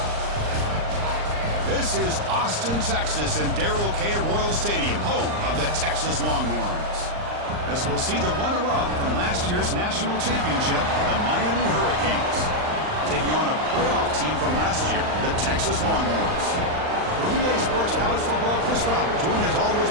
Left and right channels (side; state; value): left; late; 39 ms